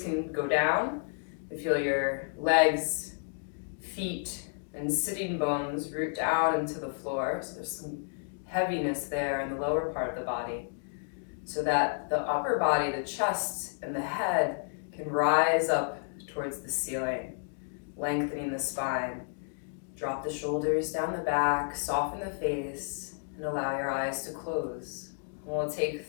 go down. You feel your legs, feet, and sitting bones root down into the floor. So there's some heaviness there in the lower part of the body, so that the upper body, the chest and the head, can rise up towards the ceiling, lengthening the spine. Drop the shoulders down the back, soften the face, and allow your eyes to close. And we'll take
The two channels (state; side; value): silent; right; digital silence